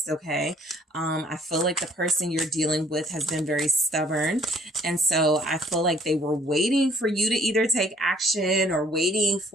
Okay. I feel like the person you're dealing with has been very stubborn. And so I feel like they were waiting for you to either take action or waiting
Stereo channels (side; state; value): both; normal; correlation 0.60